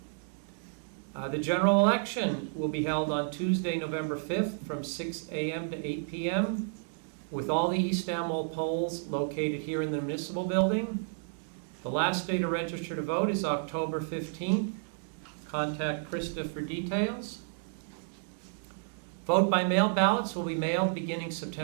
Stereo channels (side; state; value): left; silent; digital silence